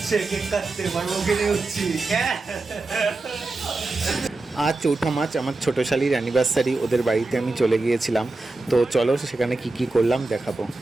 কেক কাটতে পর্বকে নিয়ে উঠছি। আজ 4 মার্চ আমার ছোটো শালির অ্যানিভার্সারি, ওদের বাড়িতে আমি চলে গিয়েছিলাম। তো চলো সেখানে কি কি করলাম দেখাবো।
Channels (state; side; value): quieter; left; 3.2 dB